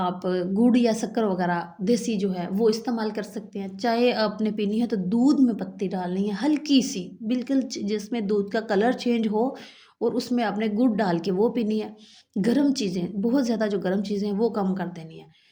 गुड़ या शक्कर वगैरह देसी जो है वो इस्तेमाल कर सकते हैं। चाय आपने पीनी है तो दूध में पत्ती डालनी है हल्की-सी, बिल्कुल जिसमें दूध का कलर चेंज हो और उसमें आपने गुड़ डाल के वो पीनी है। गरम चीज़ें, बहुत ज़्यादा जो गरम चीज़ें हैं वो कम कर देनी है।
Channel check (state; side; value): identical; both; correlation 1.00